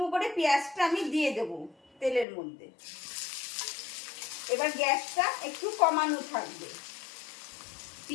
করে পেঁয়াজটা আমি দিয়ে দেব তেলের মধ্যে। এবার গ্যাসটা একটু কমানো থাকবে।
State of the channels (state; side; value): drops out; right; at 2.2 s